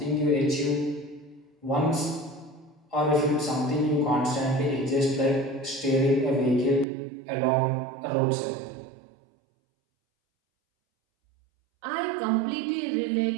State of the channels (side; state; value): left; drops out; at 6.9 s